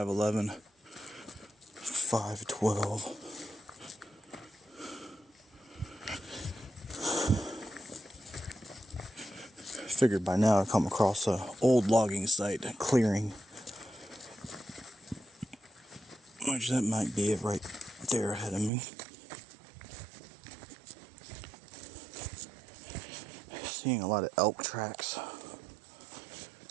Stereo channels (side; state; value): left; drops out; at 18.7 s